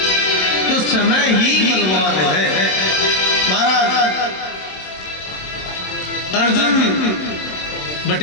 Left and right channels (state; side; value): late; right; 27 ms